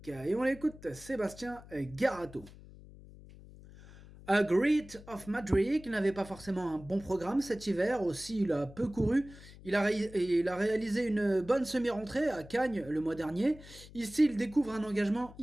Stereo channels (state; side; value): noise; left; hum, 19 dB below the sound